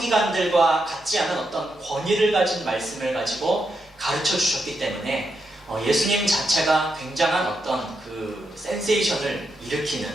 같지 않은 어떤 권위를 가진 말씀을 가지고 가르쳐 주셨기 때문에 예수님 자체가 굉장한 어떤 그 센세이션을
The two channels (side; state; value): both; normal; correlation 0.83